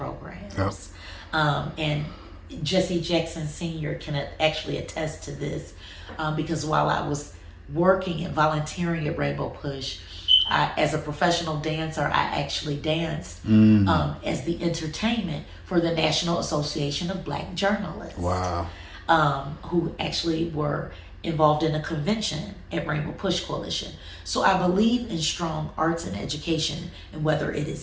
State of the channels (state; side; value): identical; both; correlation 1.00